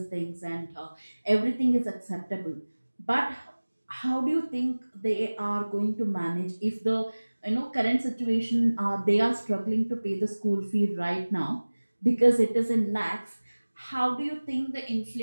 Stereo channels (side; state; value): both; inverted; correlation -1.00